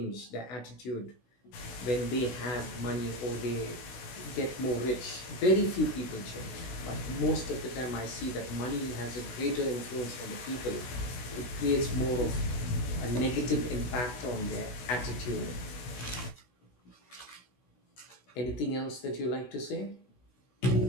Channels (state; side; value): late; right; 16 ms